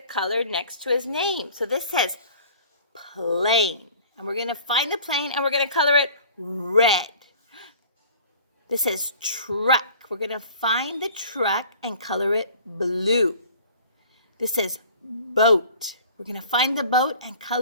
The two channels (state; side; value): inverted; both; correlation -0.47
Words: color next to his name. So this says plane. And we're going to find the plane and we're going to color it red. This says truck. We're going to find the truck and color it blue. This says boat. We're going to find the boat and